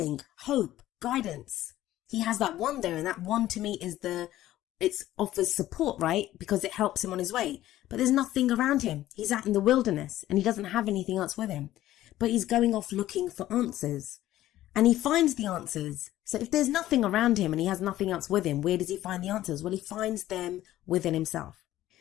hope, guidance. He has that wand there, and that wand to me is it offers support, right? Because it helps him on his way. But there's nothing around him. He's out in the wilderness and he doesn't have anything else with him. But he's going off looking for answers. And he finds the answers. So if there's nothing around him and he has nothing else with him, where does he find the answers? Well, he finds them within himself.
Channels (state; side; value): quieter; right; 14.3 dB